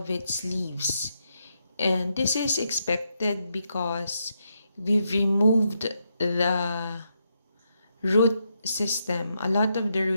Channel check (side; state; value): both; inverted; correlation -0.81